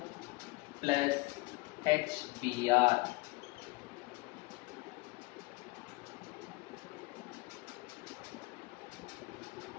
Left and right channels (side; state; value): right; quieter; 23.1 dB